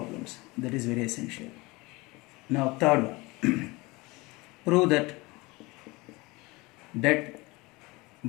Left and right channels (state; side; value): quieter; right; 23.5 dB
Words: that is very essential. Now third one, prove that